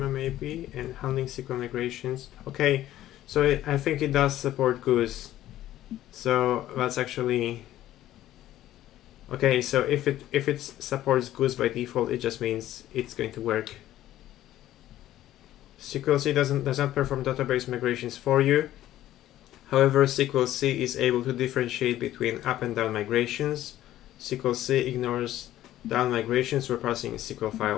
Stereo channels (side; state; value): right; quieter; 13.5 dB